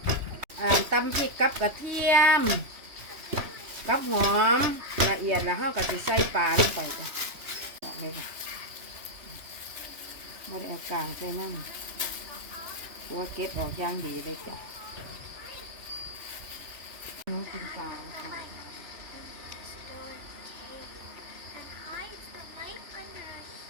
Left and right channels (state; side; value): late; left; 3.1 ms